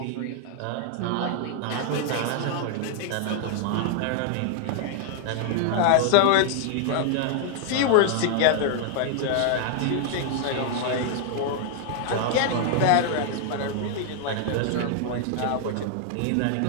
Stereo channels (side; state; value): both; different; correlation 0.00